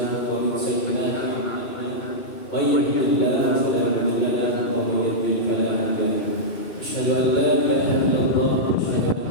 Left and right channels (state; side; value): late; right; 2.7 ms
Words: wa min sayyi'ati a'malina. May yahdihillahu fala mudilla lahu wa may yudlil fala hadiya lahu. Asyhadu an la ilaha illallah wa asyhadu